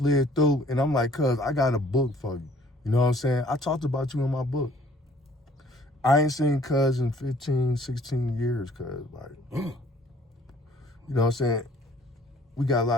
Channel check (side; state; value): both; normal; correlation 0.57